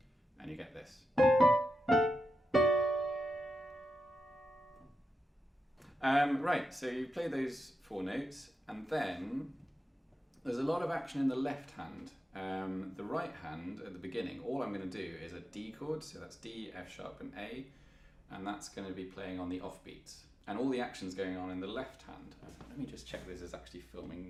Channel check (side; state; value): both; normal; correlation 0.88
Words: and you get this. Right, so you play those 4 notes, and then there's a lot of action in the left hand. The right hand at the beginning, all I'm going to do is a D chord, so that's D, F sharp and A, and that's going to be playing on the offbeats. And all the action's going on in the left hand. Let me just check this is actually